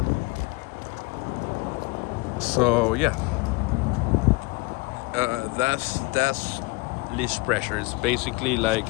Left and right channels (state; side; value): quieter; right; 24.9 dB